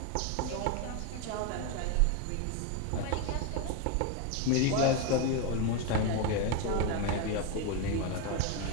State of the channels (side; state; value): both; different; correlation 0.02